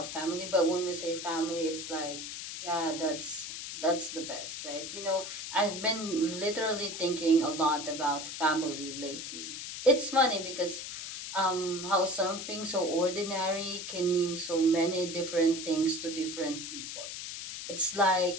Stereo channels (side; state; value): left; noise; hiss, 7 dB below the sound